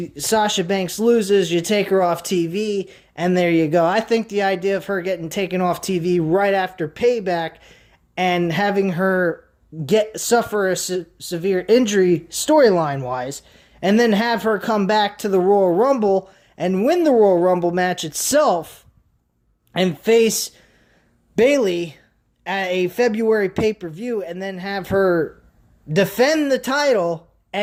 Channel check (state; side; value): identical; both; correlation 1.00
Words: Banks loses, you take her off TV, and there you go. I think the idea of her getting taken off TV right after Payback and having her suffer a severe injury storyline-wise, and then have her come back to the Royal Rumble and win the Royal Rumble match itself and face Bayley at a February pay-per-view, and then have her defend the title